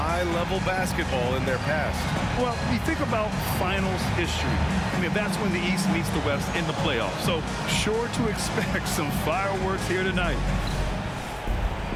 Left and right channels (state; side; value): identical; both; correlation 1.00